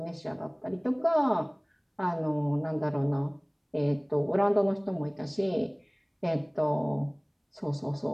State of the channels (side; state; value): both; identical; correlation 1.00